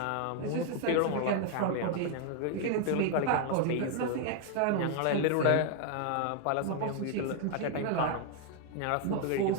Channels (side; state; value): both; different; correlation 0.00